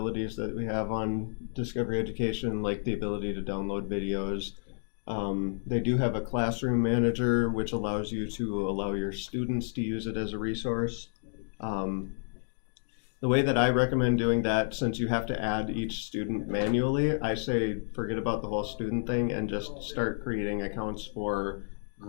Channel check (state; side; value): silent; right; digital silence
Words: that we have on Discovery Education, like the ability to download videos. They do have a classroom manager, which allows you to allow your students to use it as a resource. The The way that I recommend doing that, since you have to add each student manually, I say forget about the whole student thing and just start creating accounts for